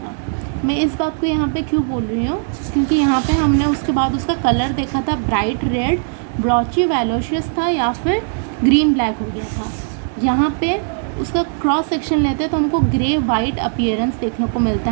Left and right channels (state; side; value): silent; left; 67 dB below the other